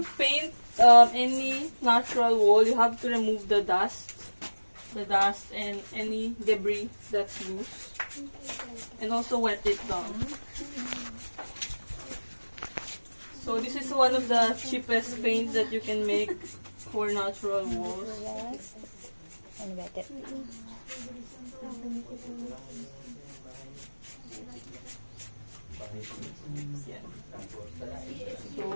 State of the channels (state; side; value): inverted; both; correlation -1.00